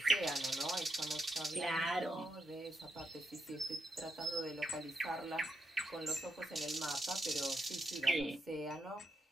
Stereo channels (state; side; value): normal; both; correlation 0.81